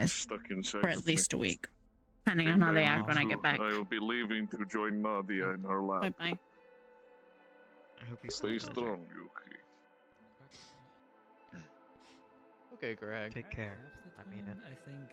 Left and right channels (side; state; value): both; identical; correlation 1.00